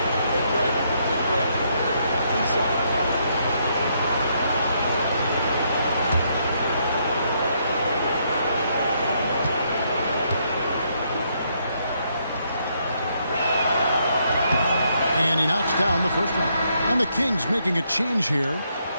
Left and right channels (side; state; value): both; inverted; correlation -0.74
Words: knocks down the first one. And the Kings making a change here.